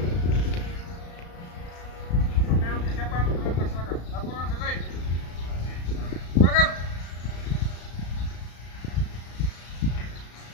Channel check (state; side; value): late; right; 35 ms